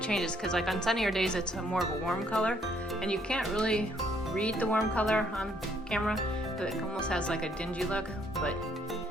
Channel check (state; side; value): normal; both; correlation 0.67